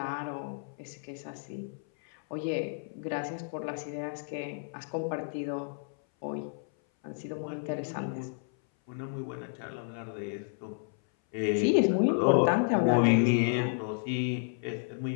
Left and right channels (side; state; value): right; silent; 57 dB below the other